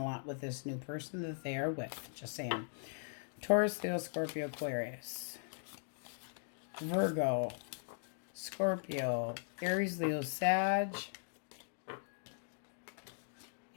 lot with this new person that they are with. Just saying. Taurus, Leo, Scorpio, Aquarius. Virgo, Scorpio, Aries, Leo, Sag.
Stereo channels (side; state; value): right; silent; digital silence